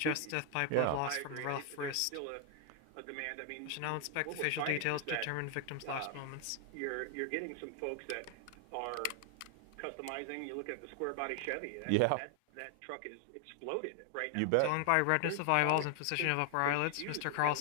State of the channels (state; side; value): different; both; correlation 0.00